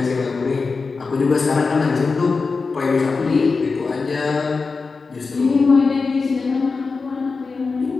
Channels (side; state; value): right; quieter; 4.4 dB